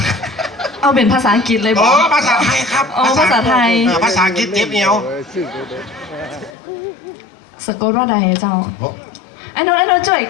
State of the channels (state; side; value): drops out; right; at 6.6 s